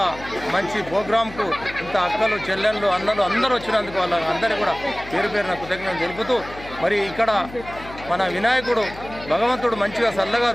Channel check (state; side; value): noise; left; hum, 16 dB below the sound